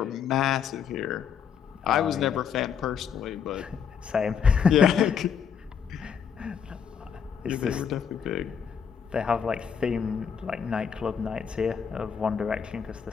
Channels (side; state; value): right; quieter; 7.3 dB